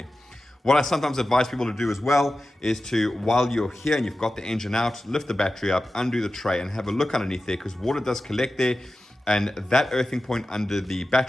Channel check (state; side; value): normal; both; correlation 0.94